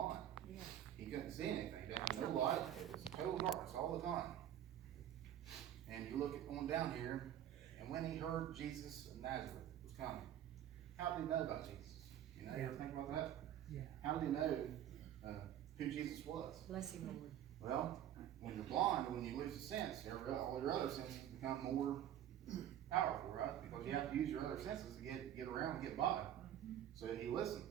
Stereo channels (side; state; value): left; quieter; 11.0 dB